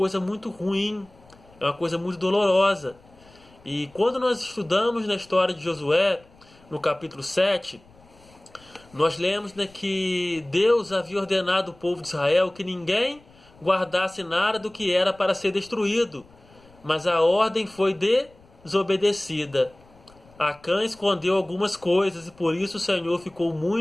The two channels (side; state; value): left; noise; rumble, 27 dB below the sound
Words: muito ruim, é uma coisa muito dolorosa. E quando nós estudamos na história de Josué, no capítulo 7, nós lemos, né, que Deus havia ordenado ao povo de Israel que ninguém guardasse nada do que era para ser destruído, mas a ordem foi desobedecida. Acã escondeu algumas coisas e por isso o Senhor ficou